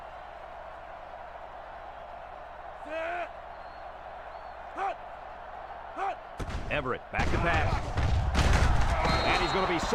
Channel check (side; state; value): both; identical; correlation 1.00